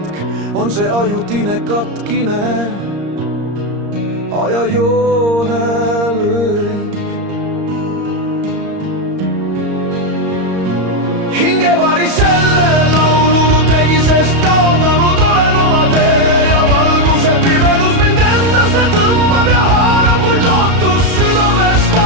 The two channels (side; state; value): left; late; 34 ms